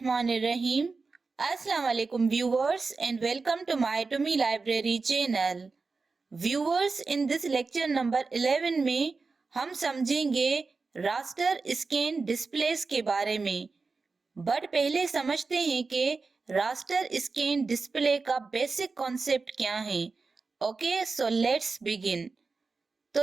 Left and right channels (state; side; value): quieter; left; 4.2 dB